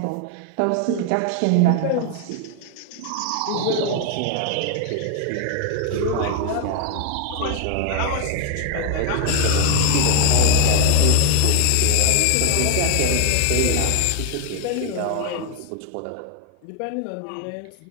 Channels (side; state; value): both; different; correlation 0.01